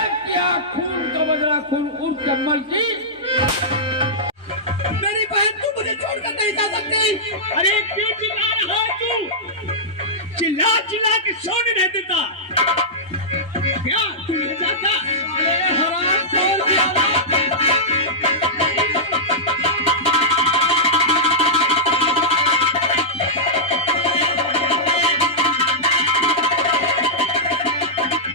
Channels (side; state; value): both; normal; correlation -0.12